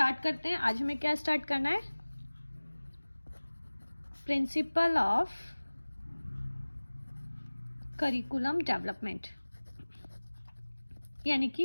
करते हैं। आज हमें क्या स्टार्ट करना है? प्रिंसिपल ऑफ करिकुलम डेवलपमेंट, यानी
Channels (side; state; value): both; inverted; correlation -1.00